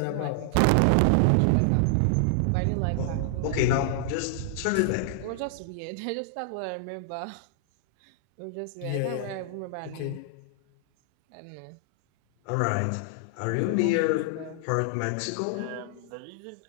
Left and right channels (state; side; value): different; both; correlation 0.00